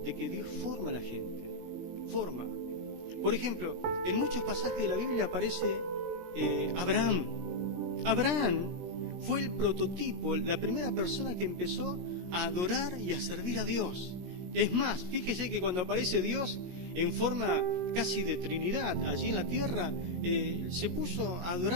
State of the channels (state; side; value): late; left; 17 ms